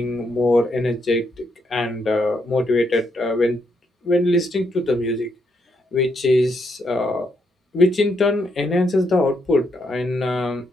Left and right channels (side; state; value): both; normal; correlation 0.77